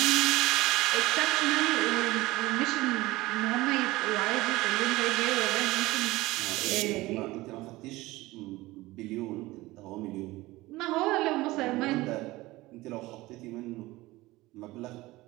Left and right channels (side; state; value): left; quieter; 19.3 dB